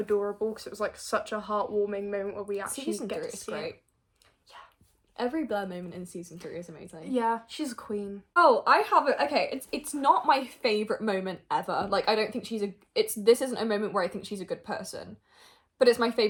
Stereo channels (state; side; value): identical; both; correlation 1.00